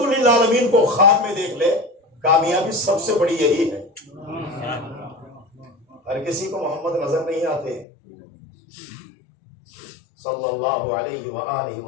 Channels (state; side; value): drops out; right; at 7.9 s